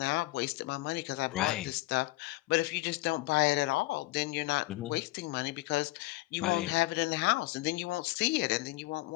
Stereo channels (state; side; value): quieter; right; 19.8 dB